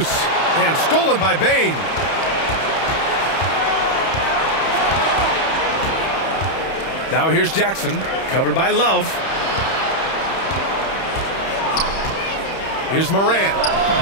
And stolen by Bane. Now here's Jackson. Covered by Love. Here's Morant.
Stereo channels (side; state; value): right; late; 31 ms